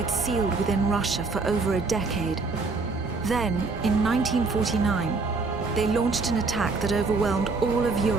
sealed within Russia for over a decade. Then, in 1949, they launched an attack that overwhelmed all of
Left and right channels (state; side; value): quieter; left; 4.0 dB